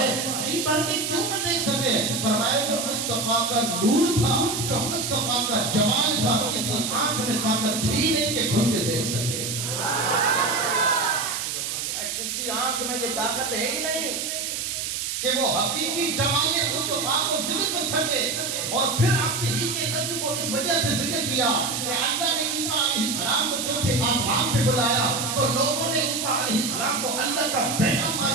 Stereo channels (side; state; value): right; noise; hiss, 3 dB below the sound